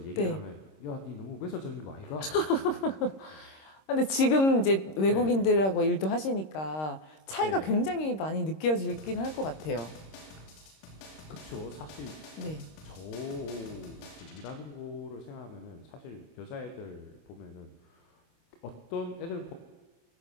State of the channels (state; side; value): late; right; 26 ms